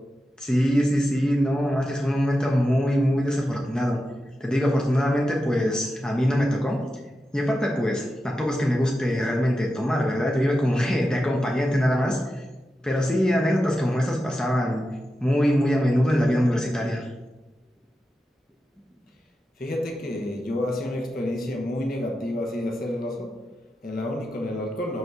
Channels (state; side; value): normal; both; correlation 0.90